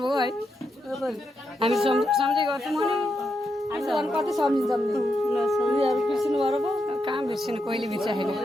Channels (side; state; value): both; normal; correlation 0.83